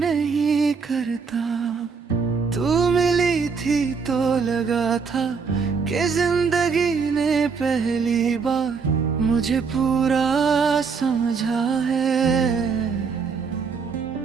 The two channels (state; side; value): quieter; left; 5.4 dB